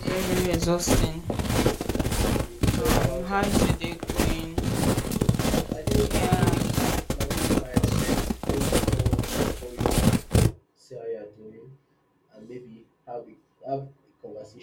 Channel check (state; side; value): identical; both; correlation 1.00